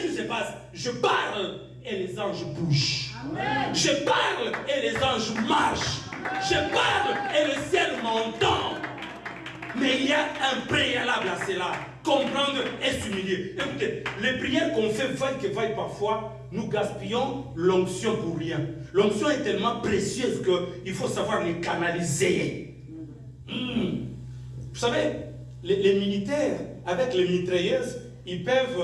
qui se passe? Je parle et les anges bougent. Amen. Je parle et les anges marchent. Je parle et le ciel m'entend. Mais il y a un préalable à cela. Comprendre et s'humilier. Écoutez, les prières qu'on fait vaille que vaille parfois, nous gaspillons l'onction pour rien. L'onction est tellement précieuse qu'il faut savoir les canaliser. Vous savez, les militaires, avec les mitrailleuses, ils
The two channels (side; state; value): both; identical; correlation 1.00